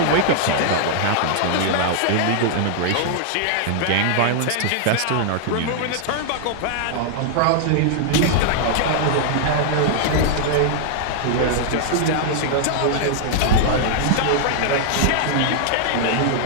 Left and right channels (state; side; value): different; both; correlation -0.01